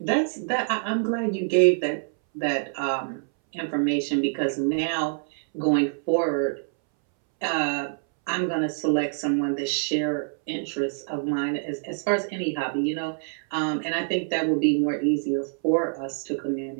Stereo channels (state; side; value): silent; left; 61 dB below the other